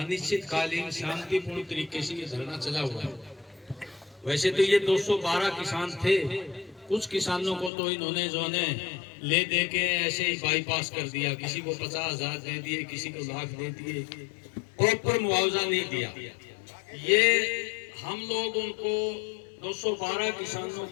शांतिपूर्ण तरीके से ये धरना चला हुआ है। वैसे तो ये 212 किसान थे, कुछ किसानों को तो इन्होंने जो ने ले दे के ऐसे ही बाईपास कर दिया, किसी को 50,000 दे दिए, किसी को लाख दे दिए, प्रॉपर मुआवजा नहीं दिया। ये हम लोग उनको 212 किसानों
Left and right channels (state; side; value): drops out; right; at 7.7 s